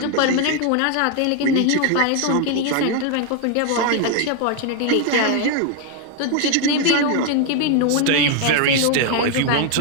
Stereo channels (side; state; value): both; different; correlation 0.01